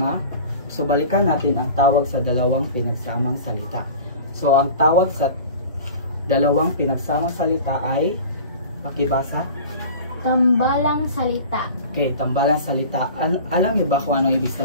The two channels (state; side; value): inverted; both; correlation -0.39